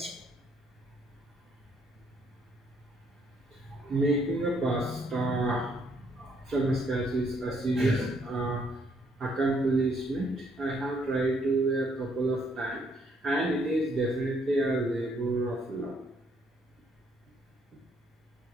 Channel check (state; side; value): normal; both; correlation 0.69